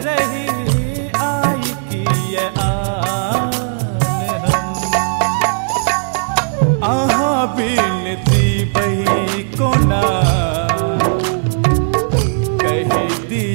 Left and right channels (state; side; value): silent; left; digital silence